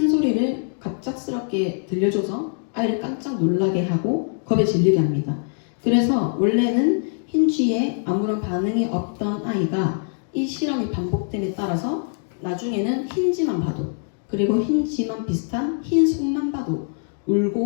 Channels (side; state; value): right; silent; 63 dB below the other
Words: 소리를 갑작스럽게 들려줘서 아이를 깜짝 놀라게 하고 겁에 질리게 합니다. 그래서 원래는 흰쥐에 아무런 반응이 없던 아이가 이 실험이 반복됨에 따라서 나중에는 흰쥐만 봐도 그리고 흰쥐만 비슷한 흰 손만 봐도